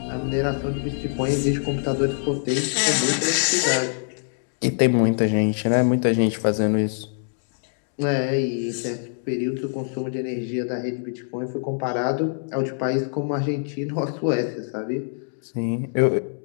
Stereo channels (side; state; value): right; silent; digital silence